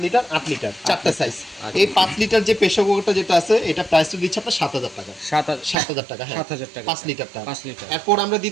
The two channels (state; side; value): drops out; left; at 5.8 s